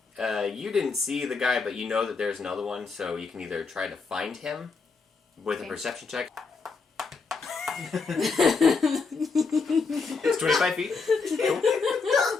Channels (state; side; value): quieter; right; 4.5 dB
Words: you didn't see the guy, but you know that there's another one, so you can either try to find him with a Okay. perception check. It's 25 feet. Cool.